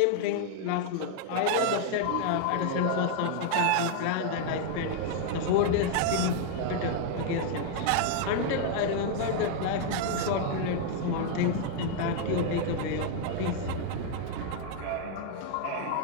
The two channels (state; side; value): different; both; correlation 0.00